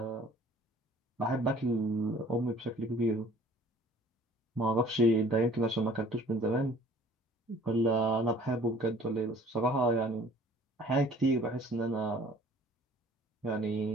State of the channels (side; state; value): both; normal; correlation 0.53